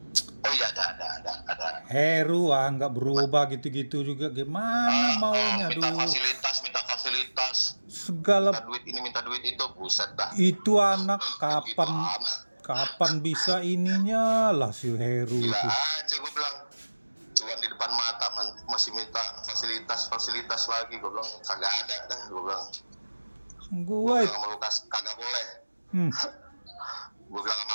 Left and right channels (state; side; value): inverted; both; correlation -1.00